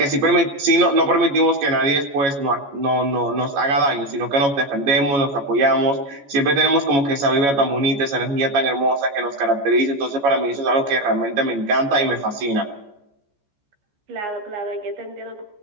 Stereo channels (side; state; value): left; late; 14 ms